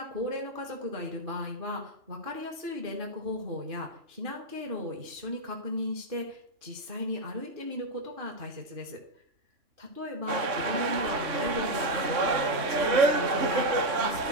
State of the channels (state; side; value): late; left; 3.5 ms